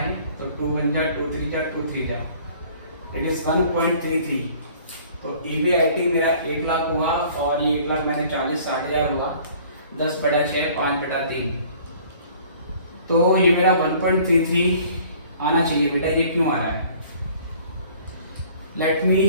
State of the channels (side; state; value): both; inverted; correlation -0.53